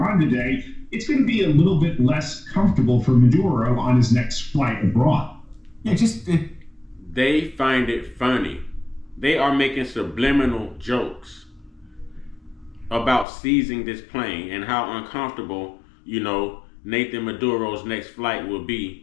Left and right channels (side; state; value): right; drops out; at 13.2 s